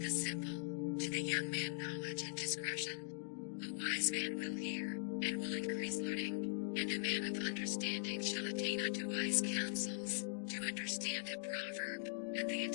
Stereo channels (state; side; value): silent; right; digital silence